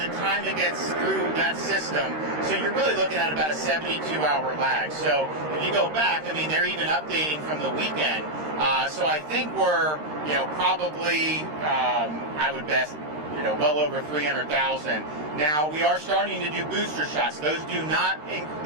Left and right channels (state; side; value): late; left; 13 ms